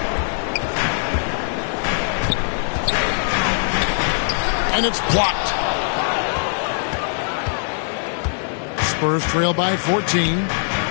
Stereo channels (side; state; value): right; silent; 65 dB below the other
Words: And it's blocked. Spurs trail by 14.